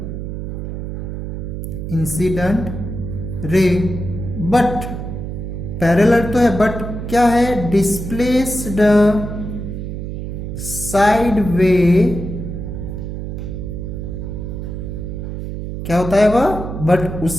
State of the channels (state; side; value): noise; right; hum, 6 dB below the sound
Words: इंसिडेंट रे। बट पैरेलल तो है, बट क्या है, डिस्प्लेस्ड साइड वे, क्या होता है वह, बट उस